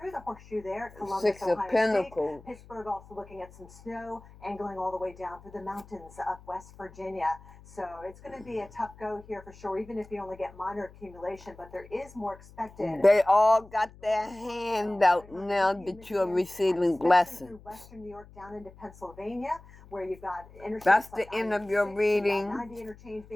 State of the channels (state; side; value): noise; left; hum, 21 dB below the sound